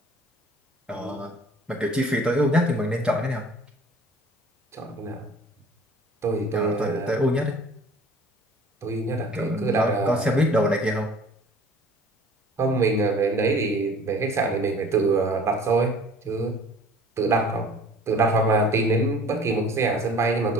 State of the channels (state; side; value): normal; both; correlation 0.49